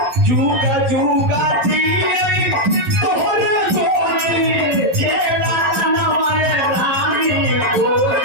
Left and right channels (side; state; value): left; late; 11 ms